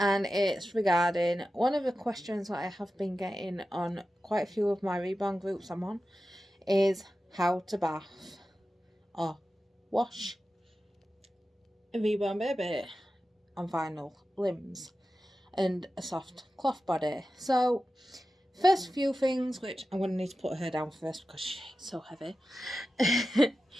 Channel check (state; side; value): normal; both; correlation 0.93